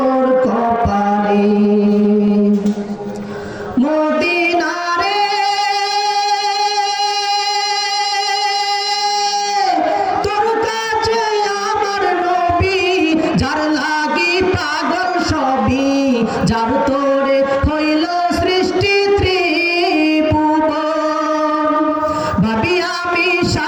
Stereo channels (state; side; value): identical; both; correlation 1.00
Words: কপালে মদিনা রে তোর কাছে আমার নবী যার লাগি পাগল সবই যার তোরে হইল সৃষ্টি ত্রিভুবন ভাবি আমি